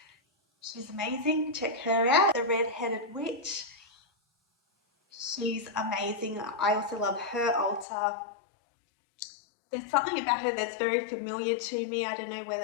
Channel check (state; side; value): drops out; right; at 7.9 s